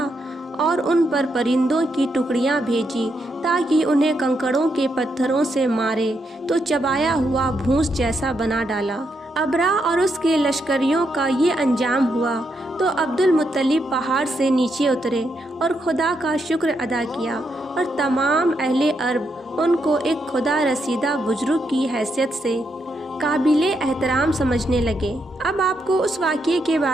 اور ان پر پرندوں کی ٹکڑیاں بھیجی تاکہ انہیں کنکڑوں کے پتھروں سے مارے تو چبایا ہوا بھوس جیسا بنا ڈالا؟ ابرہ اور اس کے لشکریوں کا یہ انجام ہوا تو عبد المطلب پہاڑ سے نیچے اترے اور خدا کا شکر ادا کیا، اور تمام اہل عرب ان کو ایک خدا رسیدہ بزرگ کی حیثیت سے قابل احترام سمجھنے لگے۔ اب آپ کو اس واقعے کے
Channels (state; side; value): normal; both; correlation 0.80